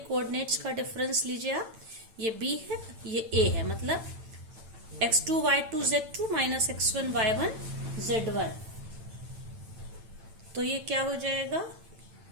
का डिफरेंस लीजिए आप, ये b है ये a है, मतलब x2 y2 z2 minus x1 y1 z1। तो ये क्या हो जाएगा,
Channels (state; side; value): late; left; 8.9 ms